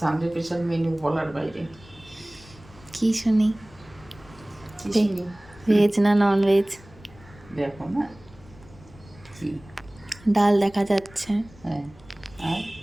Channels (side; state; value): left; noise; rumble, 23 dB below the sound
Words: special menu বলার বাইরে। কি শুনি? কি শুনি? ভেজ না নন ভেজ? দেখো না কি। ডাল দেখা যাচ্ছে, হ্যাঁ, আর